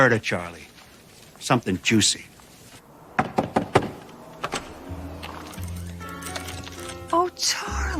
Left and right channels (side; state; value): both; identical; correlation 1.00